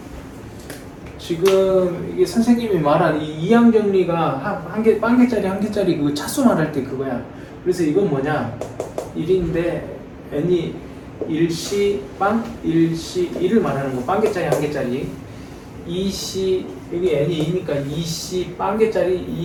지금 이게 선생님이 말한 이 이항 정리가 한 개, 빵 개짜리 한 개짜리 그 차수 말할 때 그거야. 그래서 이건 뭐냐? 1인데 n이 1시 빵 1시 1을 말하는 거. 빵 개짜리 한 개짜리. 2시 여기 n이 2니까 2시 빵 개짜리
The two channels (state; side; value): identical; both; correlation 1.00